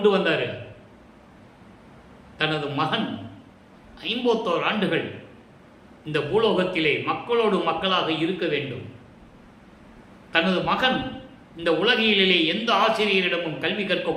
வந்தார்? தனது மகன் 51 ஆண்டுகள் இந்த பூலோகத்திலே மக்களோடு மக்களாக இருக்க வேண்டும். தனது மகன் இந்த உலகிலே எந்த ஆசிரியரிடமும் கல்வி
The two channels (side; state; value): both; identical; correlation 1.00